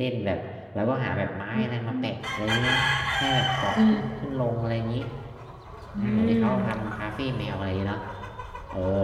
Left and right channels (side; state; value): both; identical; correlation 1.00